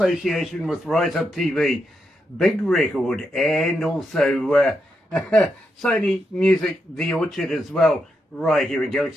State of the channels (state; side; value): normal; both; correlation 0.83